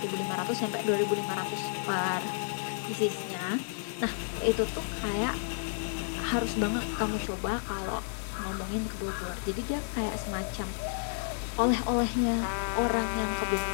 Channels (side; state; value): right; silent; digital silence